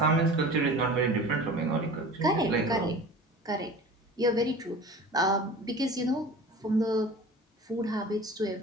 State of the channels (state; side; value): normal; both; correlation 0.39